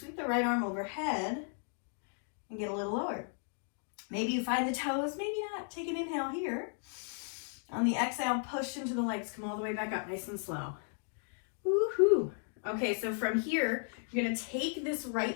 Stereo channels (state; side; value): silent; right; 54 dB below the other